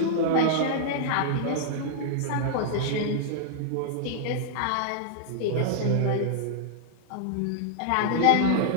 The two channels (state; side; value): different; both; correlation -0.01